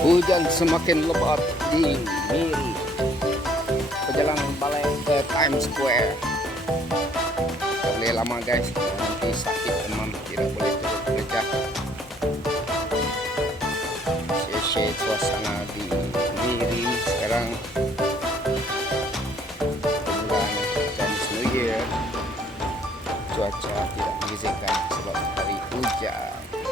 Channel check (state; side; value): normal; both; correlation 0.62